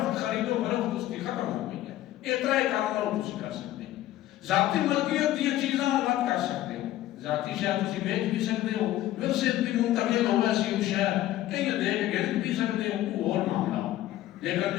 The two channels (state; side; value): quieter; right; 14.3 dB